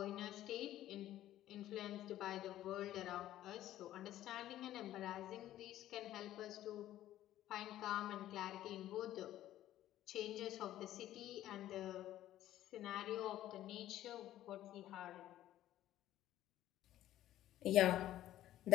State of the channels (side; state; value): right; quieter; 13.3 dB